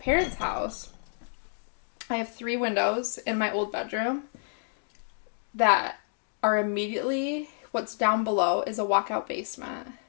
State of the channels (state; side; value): silent; right; digital silence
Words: house, I have 3 windows in my old bedroom that are immediately, what's down below is a walkout basement.